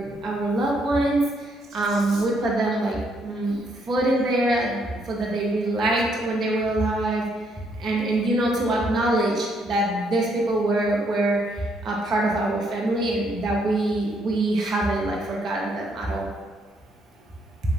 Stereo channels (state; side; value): normal; both; correlation 0.72